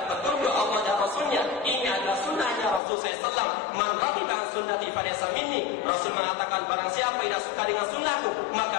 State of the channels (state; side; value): drops out; right; at 2.8 s